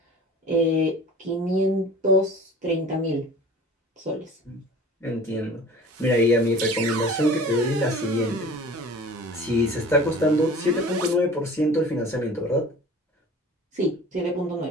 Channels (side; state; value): both; normal; correlation 0.42